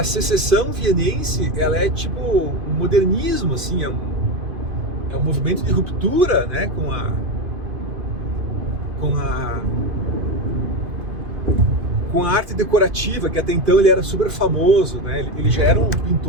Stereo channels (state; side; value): late; left; 2.5 ms